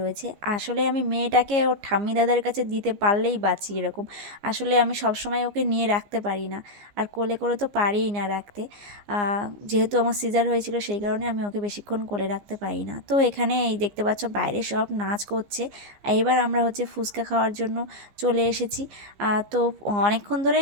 রয়েছে। আসলে আমি মেয়েটাকে ওর ঠাম্মি দাদার কাছে দিতে পারলেই বাঁচি এরকম। আসলে আমি সবসময় ওকে নিয়ে রাখতে পারি না, আর কোলে করে তো পারিই না রাখতে। যেহেতু আমার সিজার হয়েছিল সেই কারণে আমি ওকে বেশিক্ষণ কোলে রাখতে পারি না। তো এখানে এই দেখতে পাচ্ছ বাইরে সব নাচ করছে। এবার আমরা হচ্ছে ফুচকা খাওয়ার জন্য চলে এসেছি। তো অনেকক্ষণ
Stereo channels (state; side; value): late; left; 15 ms